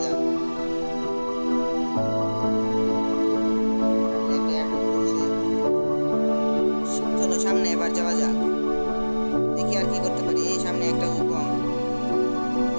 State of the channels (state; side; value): inverted; both; correlation -1.00